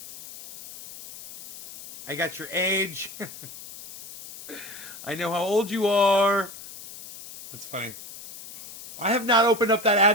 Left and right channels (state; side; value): noise; left; hiss, 15 dB below the sound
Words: I got your age. I know how old you are. That's funny. I have not opened up that